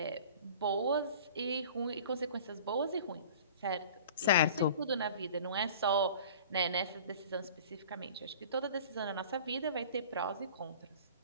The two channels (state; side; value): inverted; both; correlation -0.44